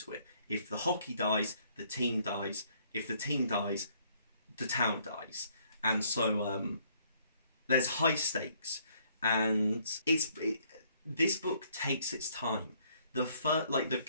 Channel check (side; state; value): both; inverted; correlation -0.66